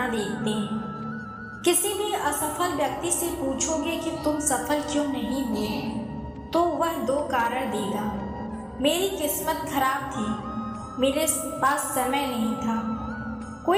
देखते हैं। किसी भी असफल व्यक्ति से पूछोगे कि तुम सफल क्यों नहीं हुए, तो वह दो कारण देगा। मेरी किस्मत खराब थी, मेरे पास समय नहीं था।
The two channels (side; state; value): both; identical; correlation 1.00